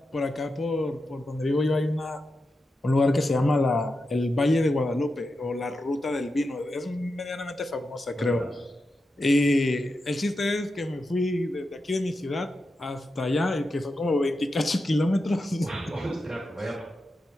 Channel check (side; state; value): both; normal; correlation 0.89